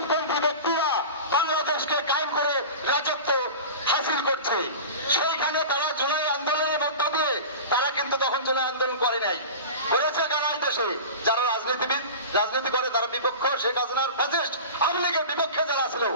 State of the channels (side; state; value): both; inverted; correlation -0.32